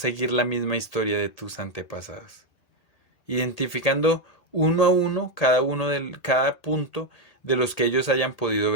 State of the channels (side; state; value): right; late; 1.8 ms